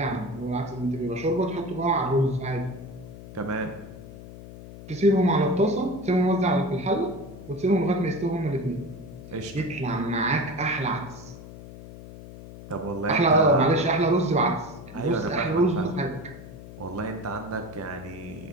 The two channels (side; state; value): left; noise; hum, 15 dB below the sound